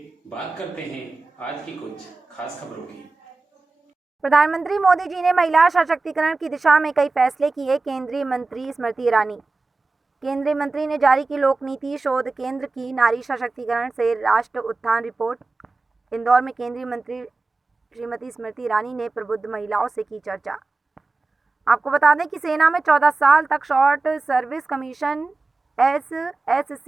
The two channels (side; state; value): left; quieter; 3.6 dB